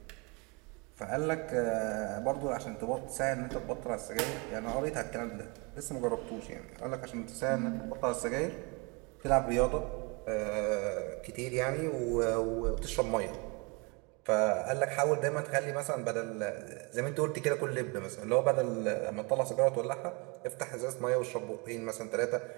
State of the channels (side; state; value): left; quieter; 29.9 dB